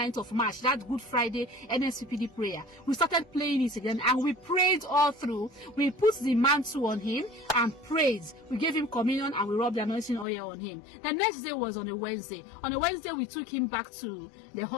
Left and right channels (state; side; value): drops out; right; at 10.2 s